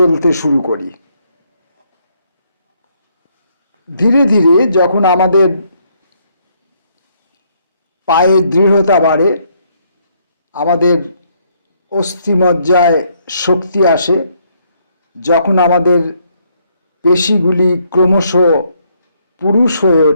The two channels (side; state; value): both; inverted; correlation -0.71